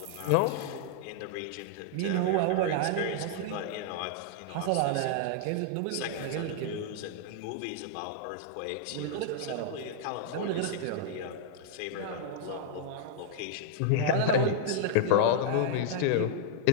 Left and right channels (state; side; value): different; both; correlation -0.01